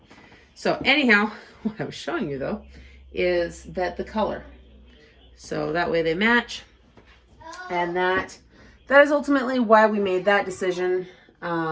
So anyhow, what I was showing you though is that the color. So that way they match, and that is ultimately why we made that decision.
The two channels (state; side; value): identical; both; correlation 1.00